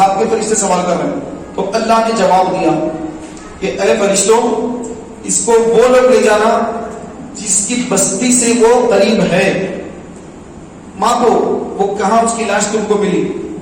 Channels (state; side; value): identical; both; correlation 1.00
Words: کے فرشتے سوال کر رہے ہیں. تو اللہ نے جواب دیا کہ اے فرشتوں, اس کو وہ لوگ لے جانا جس کی بستی سے وہ قریب ہے. ماپو وہ کہاں اس کی لاش تم کو ملی,